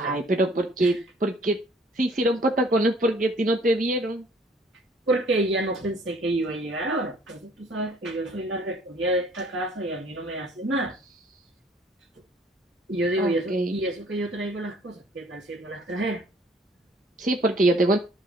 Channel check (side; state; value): both; normal; correlation 0.57